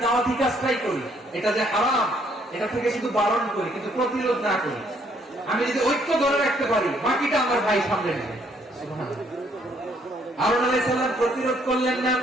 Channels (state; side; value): normal; both; correlation 0.67